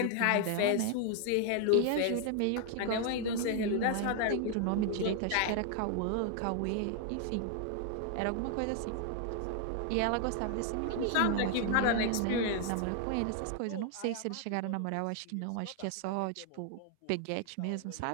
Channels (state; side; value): different; both; correlation 0.00